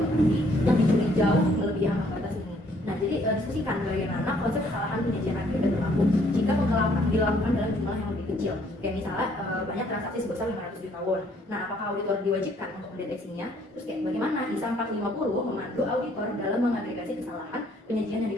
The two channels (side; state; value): both; normal; correlation 0.64